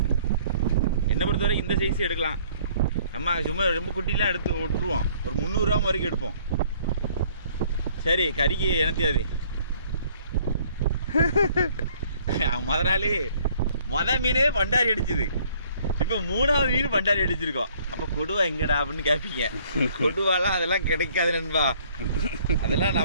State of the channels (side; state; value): both; inverted; correlation -0.59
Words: என்ன பொறுத்தவரை இந்த சைஸ் எடுக்கலாம். நம்ம சும்மா ரொம்ப குட்டிலாம் எடுத்து விட்டுருவோம், ஒரு 300 கிராம் வரைக்கும் எடுப்போம். சரி, கறிக்கு எனத்தியாது மொத மீனே பண்டாரி அடிச்சுது, இப்போ 3வது மீன் பண்டாரி அடிச்சிருக்கோம். அப்போ கொடுவா எங்கடா அப்படின்னு கேட்பீங்க. கொடுவாலாம் அதெல்லாம் கிடைக்காது நண்பா, அதெல்லாம்